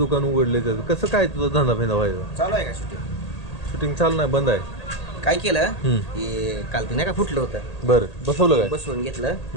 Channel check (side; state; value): right; late; 1.8 ms